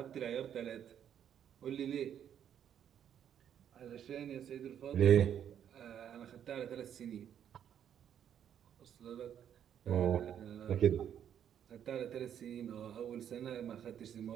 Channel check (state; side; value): quieter; left; 9.4 dB